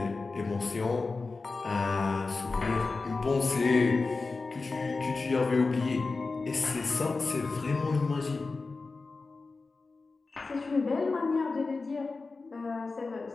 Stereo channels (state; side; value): quieter; right; 3.9 dB